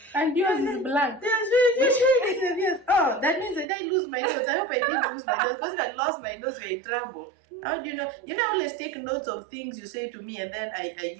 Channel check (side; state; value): left; drops out; at 3.7 s